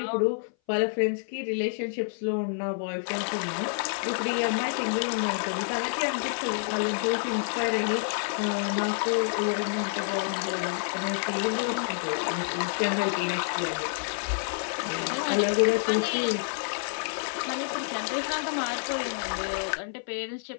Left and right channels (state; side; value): silent; right; 58 dB below the other